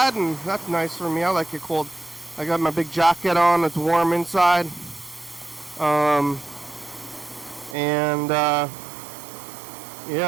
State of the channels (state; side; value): drops out; left; at 7.8 s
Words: and that's nice for me. I like it cold. I got my big jacket on. It's warm inside.